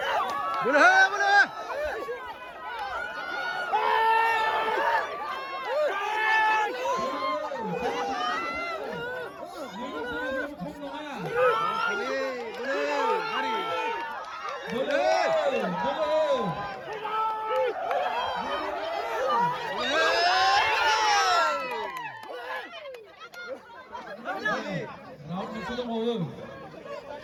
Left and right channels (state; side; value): identical; both; correlation 1.00